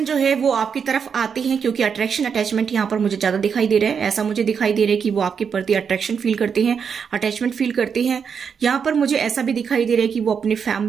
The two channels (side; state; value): left; quieter; 6.6 dB